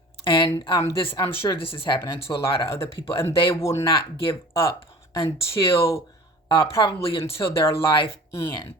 And I'm sure this is happening to a lot of other people, and they will not give up until probably until their life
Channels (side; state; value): both; normal; correlation 0.43